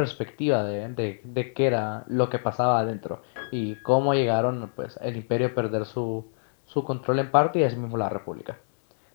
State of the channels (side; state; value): right; silent; digital silence